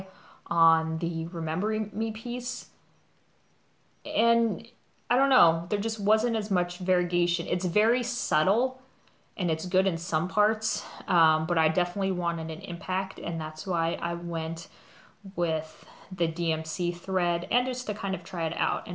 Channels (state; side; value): identical; both; correlation 1.00